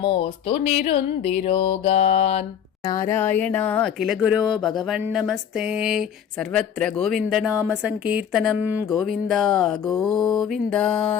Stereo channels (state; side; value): quieter; right; 8.6 dB